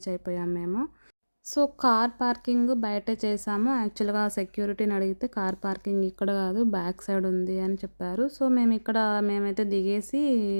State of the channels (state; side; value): inverted; both; correlation -1.00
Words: అయిపోయాం మేము. సో కార్ పార్కింగ్ బయటే చేసాము. యాక్చువల్గా సెక్యూరిటీని అడిగితే కార్ పార్కింగ్ ఇక్కడ కాదు, బ్యాక్ సైడ్ ఉంది అని చెప్పారు. సో మేమైతే దిగేసి